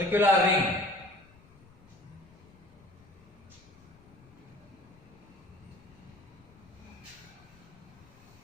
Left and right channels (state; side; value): noise; left; rumble, 25 dB below the sound